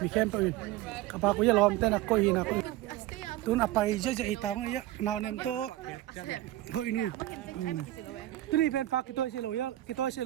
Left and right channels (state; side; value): quieter; left; 15.6 dB